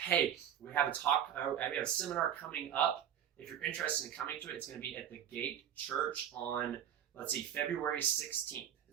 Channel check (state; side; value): quieter; left; 9.7 dB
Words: we have a seminar coming up. If you're interested in coming to it, it's going to be at the Gate Church on, February 16th.